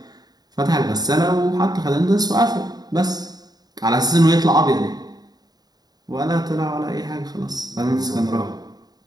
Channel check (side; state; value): left; late; 0.19 ms